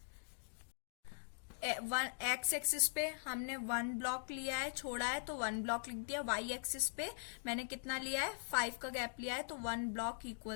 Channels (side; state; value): right; silent; digital silence